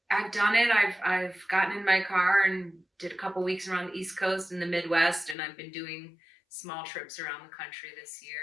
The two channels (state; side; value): drops out; right; at 5.4 s